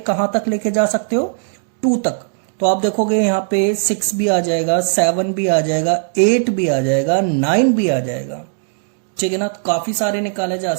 कहां तक लेके जा सकते हो, 2 तक। तो आप देखोगे यहां पे 6 भी आ जाएगा, 7 भी आ जाएगा, 8 भी आ जाएगा, 9 भी आ जाएगा, ठीक है ना। तो काफी सारे निकाले जा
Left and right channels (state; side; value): silent; left; digital silence